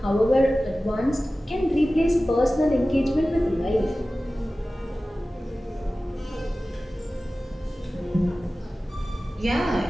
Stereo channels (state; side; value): normal; both; correlation 0.96